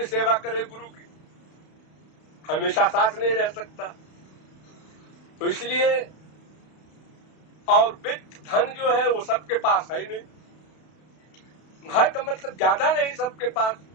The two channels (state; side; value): late; right; 32 ms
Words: सेवा करे गुरु की? हमेशा साथ नहीं रह सकता। तो इसलिए, और वित्त धन जो है वो सबके पास है ही नहीं। है का मतलब ज्यादा नहीं सबके पास।